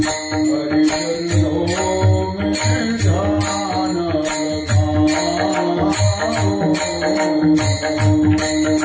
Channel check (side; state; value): both; identical; correlation 1.00